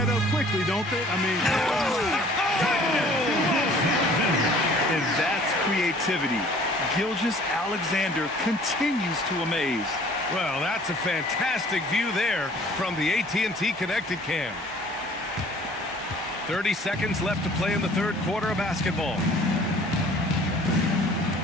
up quickly, don't they? I mean... And that's creativity. Gilgeous-Alexander continues to amaze. Well, that's a fantastic view there from the AT&T Connected Cam. 30 seconds left to play in the third quarter of basketball.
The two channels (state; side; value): normal; both; correlation 0.53